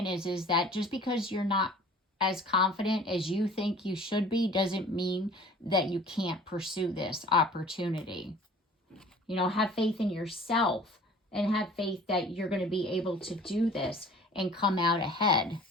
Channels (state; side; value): normal; both; correlation 0.47